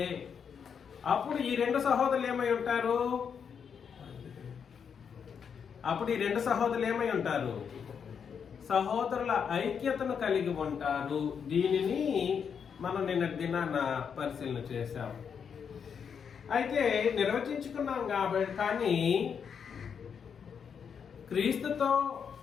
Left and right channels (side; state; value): right; quieter; 7.0 dB